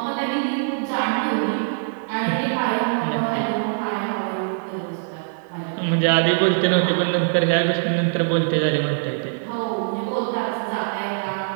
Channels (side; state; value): left; silent; digital silence